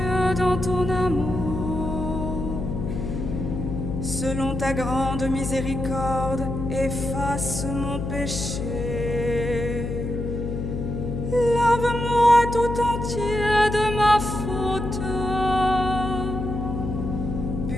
dans ton amour. Selon ta grande miséricorde, efface mon péché. Lave-moi tout entier de ma faute.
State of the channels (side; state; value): left; noise; hum, 4 dB below the sound